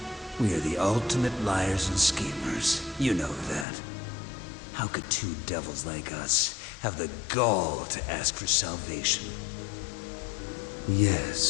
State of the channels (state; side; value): drops out; right; at 3.7 s